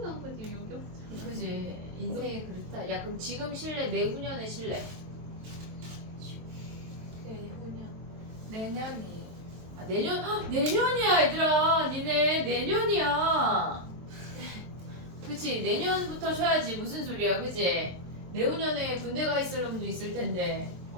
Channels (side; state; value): left; late; 23 ms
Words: 않고 지금 여기 왔잖아. 그지 인생이 그렇다. 야 그럼 지금 쉴래? 내후년에 쉴래? 내후년. 내년이에요. 아, 내년 내년이야 얘들아. 니네 내년이야. 그치 내년부터 쉬어야지. 무슨 소리야 그지? 내후년에 군대 가 있을 놈도 있을 텐데.